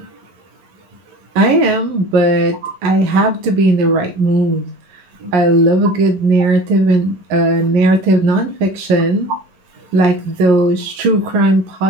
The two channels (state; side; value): late; left; 11 ms